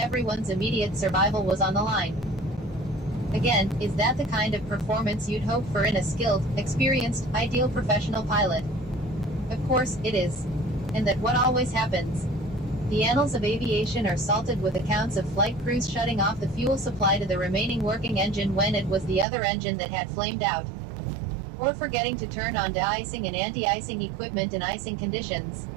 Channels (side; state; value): left; drops out; at 19.2 s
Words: immediate survival was on the line. Again, is that the kind of performance you'd hope for in a skilled, experienced, ideal professional pilot? Of course, it is. And that what always happens? The annals of aviation are salted with accounts of flight crews shutting off the fuel supply to the remaining working engine when it was the other engine that had flamed out. Or forgetting to turn on de-icing and anti-icing equipment in icing conditions.